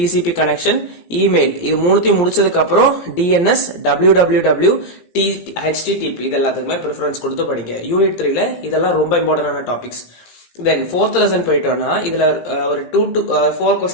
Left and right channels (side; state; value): right; late; 17 ms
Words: connection email இது மூணுத்தையும் முடிச்சதுக்கு அப்புறம் DNS www HTTP இது எல்லாத்துக்குமே ப்ரிஃபரன்ஸ் கொடுத்து படிங்க. யூனிட் 3ல இதெல்லாம் ரொம்ப இம்பார்ட்டன்டான டாபிக்ஸ். தென் ஃபோர்த் லெசன் போயிட்டோம்னா இதுல ஒரு 2 to 4